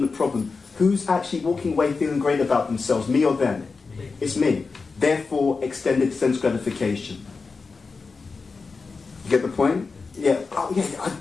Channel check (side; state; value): right; quieter; 4.5 dB